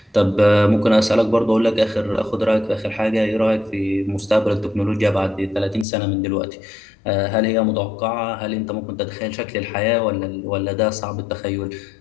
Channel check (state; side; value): drops out; right; at 5.9 s